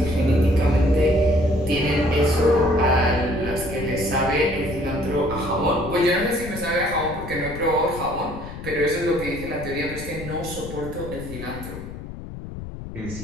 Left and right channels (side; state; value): left; noise; rumble, 11 dB below the sound